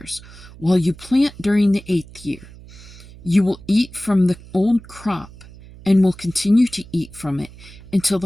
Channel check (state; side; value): noise; right; hum, 19 dB below the sound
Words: while you plant during the 8th year. You will eat from the old crop and will continue to eat from it until the